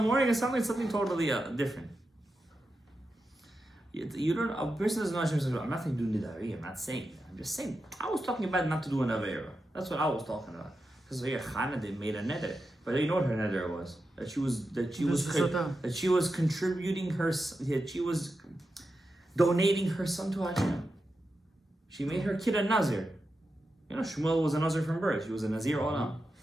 and suddenly something totally different. You don't, a person doesn't know Hashem says, I'm not saying do nidari, I'm not saying that. I'm just saying, I was talking about not to do an avera. That's what I was talking about. Because here, Chana, they made a neder. But you know what her neder was? That she was contributing that she was donating her son to Hashem. She made her kid a Nazir. You know, Shmuel was a Nazir from birth. She was a Nazir Olam.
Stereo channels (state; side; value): normal; both; correlation 0.89